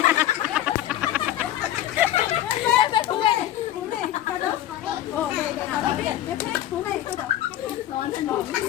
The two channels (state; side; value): quieter; right; 12.9 dB